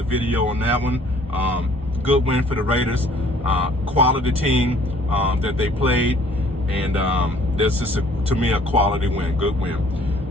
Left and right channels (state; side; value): normal; both; correlation 0.57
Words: video on that one. Good win for the Raiders. Quality team that they played. And this is, to me, a quality win. Good win.